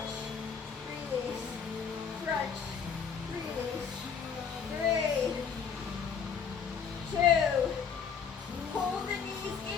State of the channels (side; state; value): right; quieter; 6.7 dB